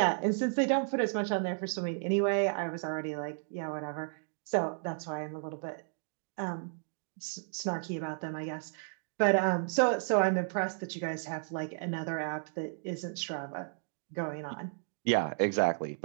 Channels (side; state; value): left; silent; digital silence